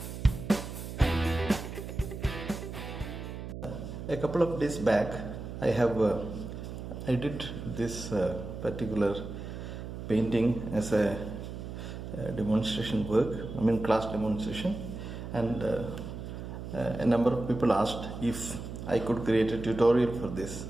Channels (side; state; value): right; noise; hum, 8 dB below the sound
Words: A couple of days back I did this particular painting as a demonstration work, class demonstration, and a number of people asked if I could create a tutorial for this.